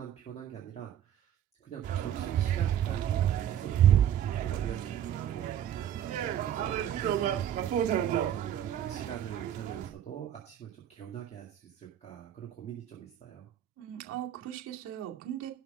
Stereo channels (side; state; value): left; quieter; 10.5 dB